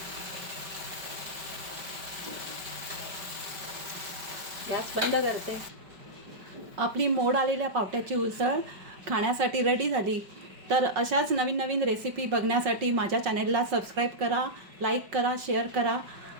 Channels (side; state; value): left; late; 5.2 ms